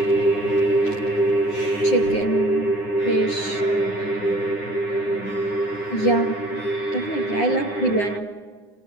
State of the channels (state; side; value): late; right; 9.8 ms